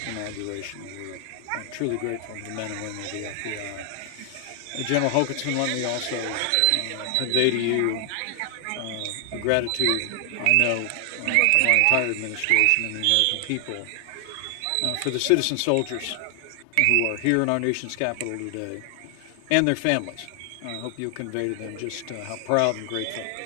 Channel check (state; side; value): different; both; correlation 0.00